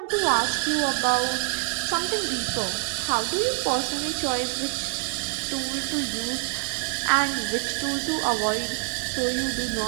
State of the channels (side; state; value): left; quieter; 38.0 dB